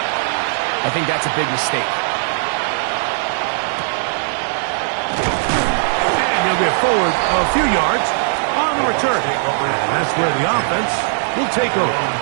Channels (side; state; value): left; silent; 62 dB below the other